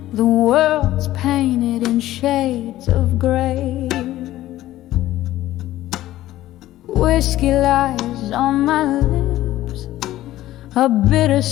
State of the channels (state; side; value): quieter; right; 14.8 dB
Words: the world's painted in shades of gray. Whiskey lies on my lips, a